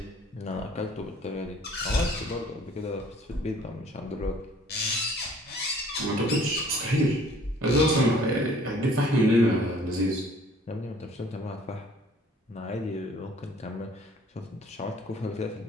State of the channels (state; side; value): normal; both; correlation 0.55